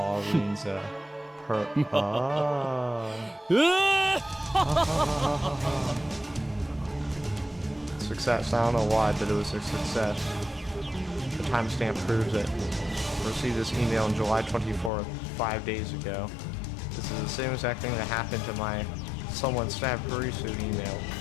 Success. I don't know why, but it was a success. The timestamp proves it. I received this email on July 24th, 5 days ago. This is the same exact thing that happened to my someone stabbed Kurisu email.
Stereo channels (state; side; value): drops out; right; at 14.9 s